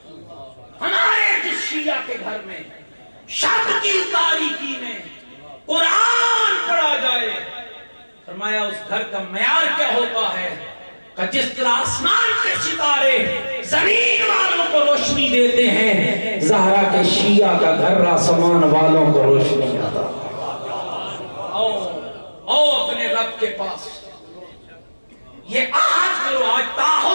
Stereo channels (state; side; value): inverted; both; correlation -1.00